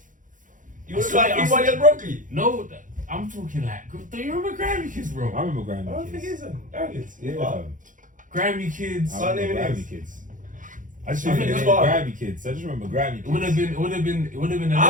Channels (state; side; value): late; left; 0.38 ms